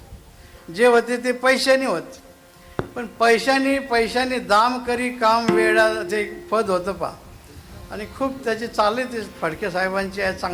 जे होते ते पैशाने होते. पण पैशाने दाम करी काम वेळा ते पद होतं पा, आणि खूप त्याची चालले ते फडके साहेबांची आहे,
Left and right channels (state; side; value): identical; both; correlation 1.00